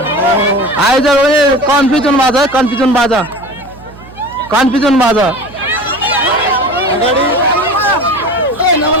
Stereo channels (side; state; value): right; noise; hum, 20 dB below the sound